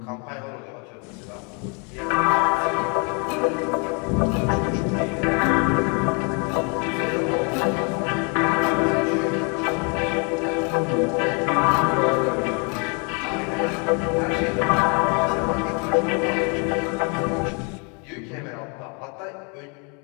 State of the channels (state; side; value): quieter; right; 34.9 dB